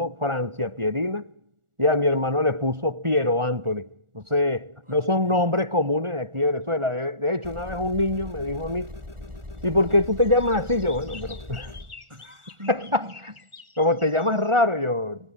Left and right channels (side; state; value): left; late; 1.4 ms